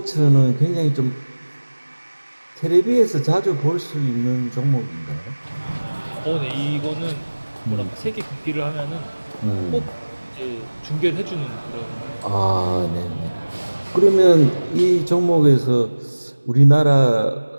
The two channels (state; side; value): inverted; both; correlation -1.00